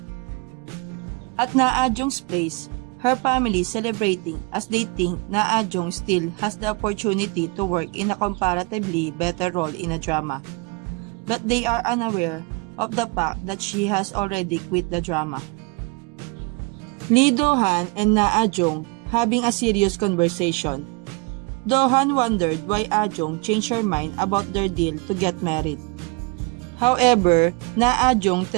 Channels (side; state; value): left; quieter; 27.4 dB